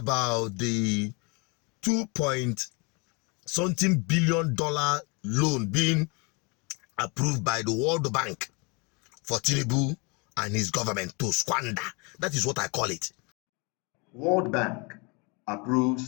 the 2-point-something billion loan being approved by the World Bank for Tinubu and his government to squander. That is what I call it. World Bank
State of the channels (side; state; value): right; quieter; 30.4 dB